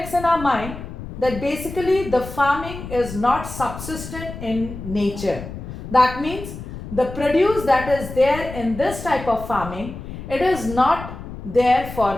in our mind that basically the farming is not subsistent in nature. That means the produce that is there in this type of farming, it is not there for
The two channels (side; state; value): left; noise; rumble, 11 dB below the sound